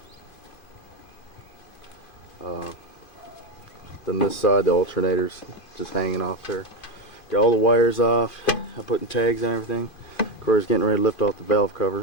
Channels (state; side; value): late; right; 2.5 ms